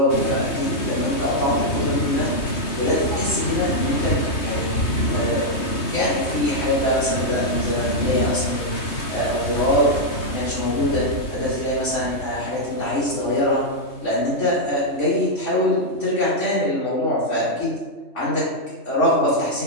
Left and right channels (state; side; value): late; right; 3.2 ms